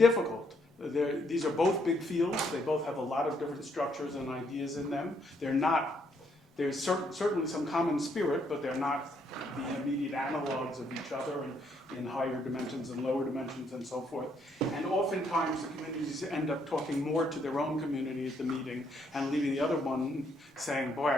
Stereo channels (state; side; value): normal; both; correlation 0.72